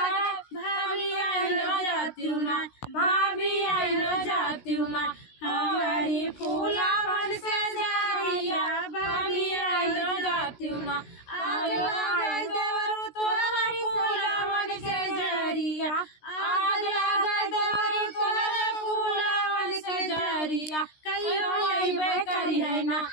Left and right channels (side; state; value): right; late; 16 ms